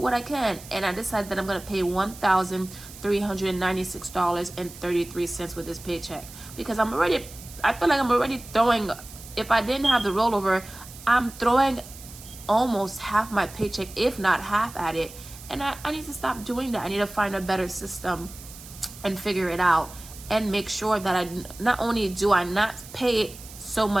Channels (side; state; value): right; noise; hiss, 17 dB below the sound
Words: I can. And I decided that I'm going to pay $1,396.33 with this paycheck. Because I feel like I'm already throwing, if I didn't have the rollover, I'm throwing almost half my paycheck, if not half at it. And I need to stop doing that. I need to find a better system and figure it out. And make sure that I not only do I not pay so